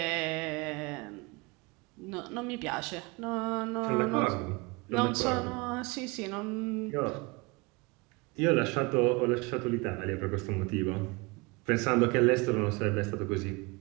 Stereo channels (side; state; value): left; quieter; 26.3 dB